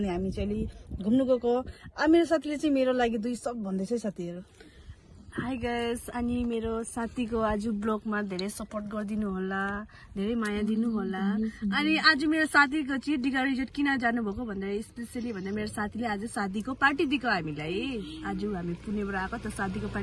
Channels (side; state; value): both; identical; correlation 1.00